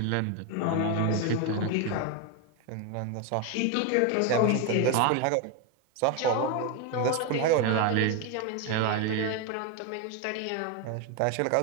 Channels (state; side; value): different; both; correlation 0.02